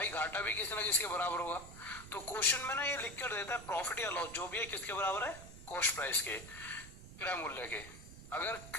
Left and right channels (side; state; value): right; noise; rumble, 14 dB below the sound